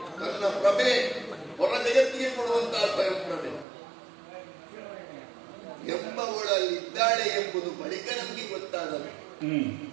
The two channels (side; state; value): left; drops out; at 3.7 s